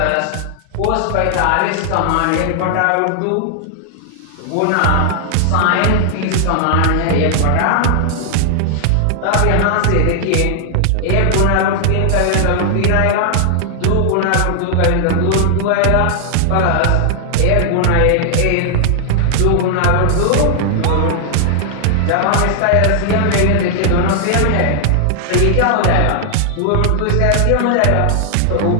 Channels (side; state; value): both; different; correlation 0.00